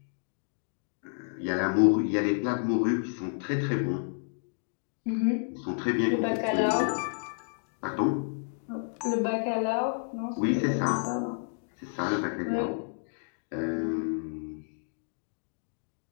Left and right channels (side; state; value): right; silent; digital silence